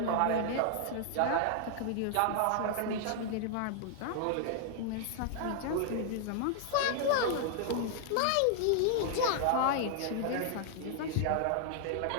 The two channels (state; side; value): different; both; correlation -0.01